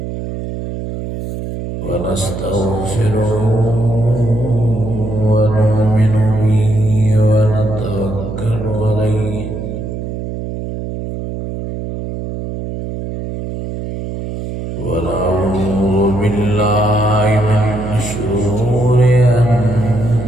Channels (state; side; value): noise; right; hum, 7 dB below the sound